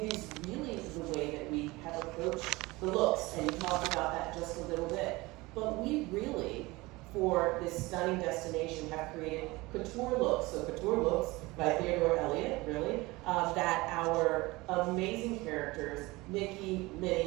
is really the way that we have approached the looks, and you talked about that just a little bit. But we really, for this stunning destination, have created couture looks. So couture looks by Theodore Elliott, really, that our amazing characters, Mickey,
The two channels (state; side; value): quieter; left; 21.9 dB